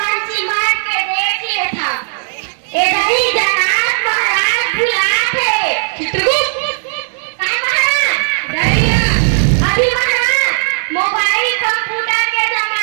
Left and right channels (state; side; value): silent; left; digital silence